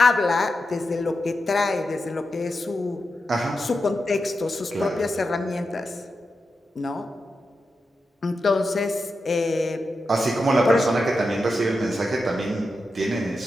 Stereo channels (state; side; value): normal; both; correlation 0.89